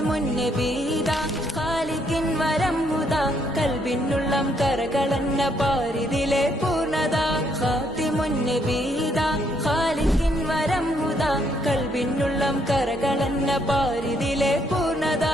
നബീദാ ഖാലിഖിൻ വരംഹുദാ, കൽബിനുള്ളം കരകളന്ന പാരിതിലെ പൂർണ്ണത. ഖാതിമുൻ നബീദാ ഖാലിഖിൻ വരംഹുദാ, കൽബിനുള്ളം കരകളന്ന പാരിതിലെ പൂർണ്ണത.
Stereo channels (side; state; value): both; normal; correlation 0.71